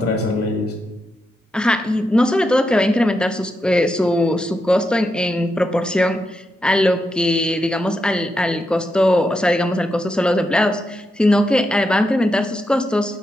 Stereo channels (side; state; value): both; normal; correlation 0.85